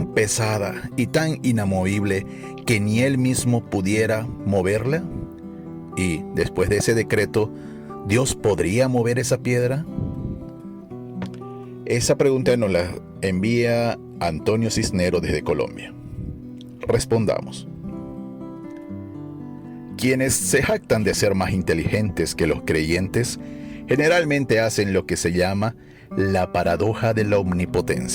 pesada y tan inamovible que ni Él mismo pudiera moverla? Y después de ese decreto, ¿Dios podría mover esa piedra? Esa pregunta nos la envía Antonio Cisnero desde Colombia. Respondamos. Quienes se jactan de ser más inteligentes que los creyentes generalmente hacen lo que se llama la paradoja de la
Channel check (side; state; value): both; identical; correlation 1.00